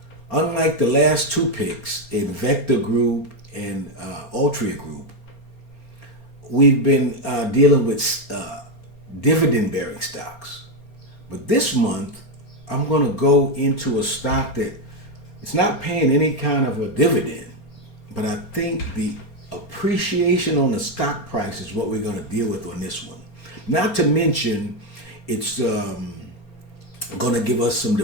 Unlike the last two picks in Vector Group and Altria Group, we've been dealing with dividend-bearing stocks. But this month, I'm going to go into a stock that it's not paying any kind of a dividend, but I think the appreciation on the stock price is what we're going to deal with on this one. Not to mention, it's going to give us some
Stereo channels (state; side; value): late; right; 4.3 ms